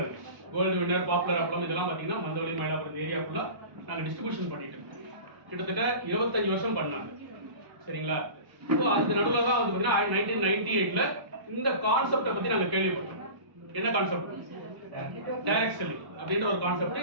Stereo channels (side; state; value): left; late; 1.0 ms